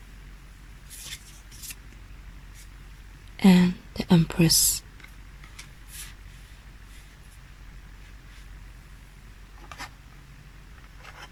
and the Empress.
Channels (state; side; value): identical; both; correlation 1.00